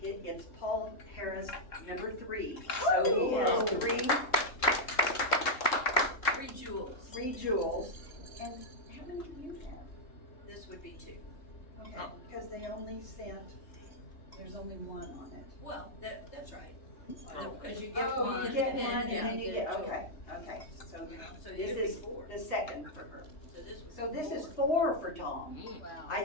It's Paul Harris, number 3. So he has Three jewels. 3 jewels. And how many do you have? This would be 2. Okay, because they only sent, there's only 1 on it. Well, that's right. Because you get Oh, one. you get and one and then you get, a jewel. okay, so So this you'd be is 4. the second for her. So this would be So this is 4. 4 for Tom. Wow. I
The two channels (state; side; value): late; right; 3.1 ms